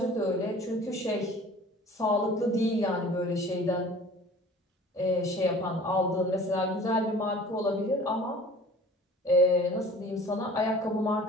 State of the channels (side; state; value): both; normal; correlation 0.46